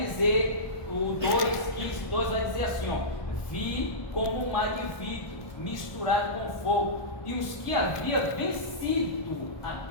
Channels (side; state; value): right; late; 1.2 ms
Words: o 2 vai dizer assim, ó: vi como um mar de vidro misturado com fogo, e os que havia vencido a